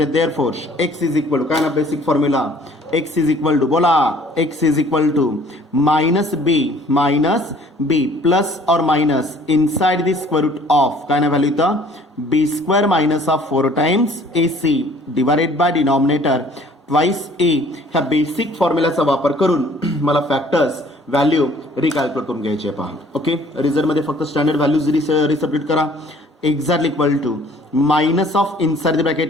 Therefore x is equal to काय ना, basic formula X is equal to बोला, X is equal to minus B plus और minus inside the square root of काय ना व्हॅल्यू इथं B square minus of 4 times A C divided by denominator twice A. ह्या बेसिक फॉर्म्युलाचा वापर करून मला फॅक्टर्स व्हॅल्यू रिकॅल्क्युलेट करून घ्यायचे पहा. ओके, रिझल्टमध्ये फक्त स्टँडर्ड व्हॅल्यूज रिसब्स्टिट्यूट करा. Exactly equal to minus of inside the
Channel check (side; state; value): both; normal; correlation 0.55